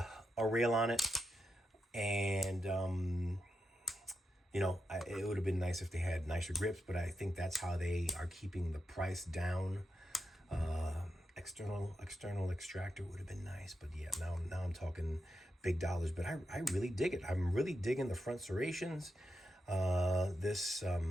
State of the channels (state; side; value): normal; both; correlation 0.86